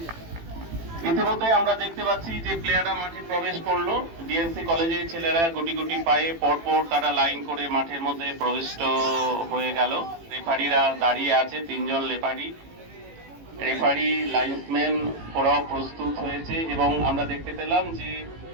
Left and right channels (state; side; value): late; left; 18 ms